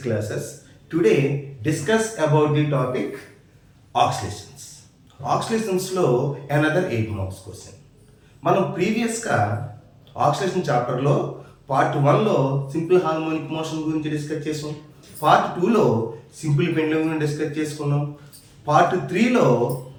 classes. Today, discuss about the topic oscillations. Oscillations లో another 8 marks question. మనం ప్రీవియస్గా ఆక్సిలేషన్ చాప్టర్లో part 1లో సింపుల్ హార్మోనిక్ మోషన్ గురించి డిస్కస్ చేసాం. పార్ట్ 2లో సింపుల్ పెండ్యులమ్ గురించి డిస్కస్ చేసుకున్నాం. పార్ట్ 3లో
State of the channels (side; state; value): both; identical; correlation 1.00